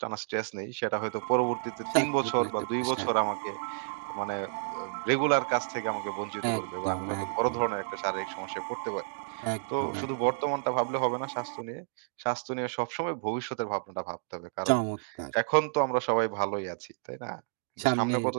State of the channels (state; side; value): silent; left; digital silence